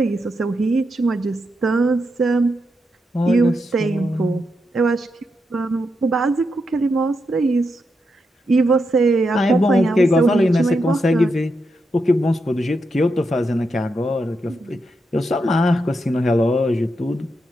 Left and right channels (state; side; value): normal; both; correlation 0.84